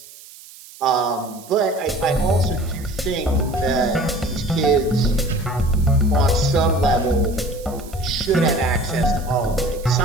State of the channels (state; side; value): noise; right; hiss, 20 dB below the sound